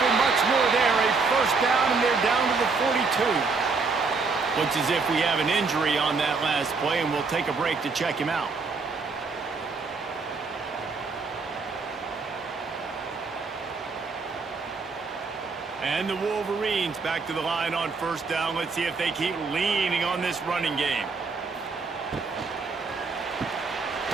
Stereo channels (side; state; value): left; quieter; 4.4 dB